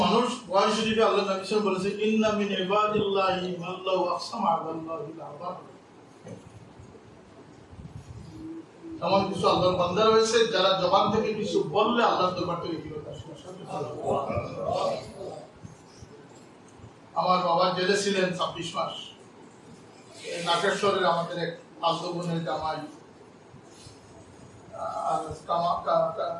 মানুষ বুখারী শরীফে আল্লাহ নবী সাল্লাল্লাহু আলাইহি ওয়াসাল্লাম বলেছে, ইন্না মিন ইবাদিল্লাহি মান লাউ আকসামা আলাল্লাহি লাআবার। এমন কিছু আল্লাহর বান্দা রয়েছে যারা জবান থেকে কিছু বললে আল্লাহর দরবার থেকে ফিরত আসে। আমার বাবা জেলে ছিলেন 26 মাস। নাগেশ্বরের আমাদের এক আব্দুলের জামাই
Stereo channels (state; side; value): identical; both; correlation 1.00